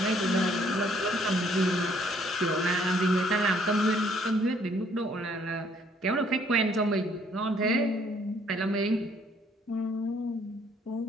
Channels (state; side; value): normal; both; correlation 0.64